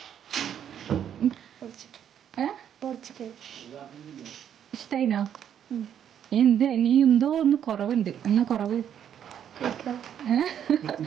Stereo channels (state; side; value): quieter; left; 9.3 dB